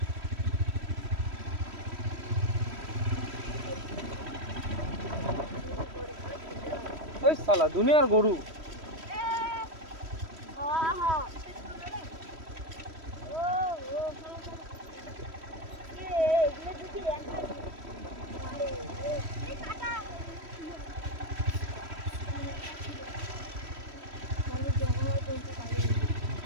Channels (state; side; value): late; left; 3.1 ms